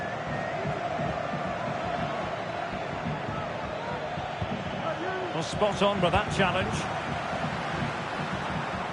Well, spot on with that challenge.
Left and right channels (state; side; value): identical; both; correlation 1.00